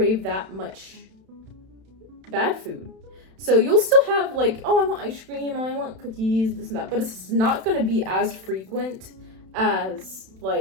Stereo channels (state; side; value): late; left; 31 ms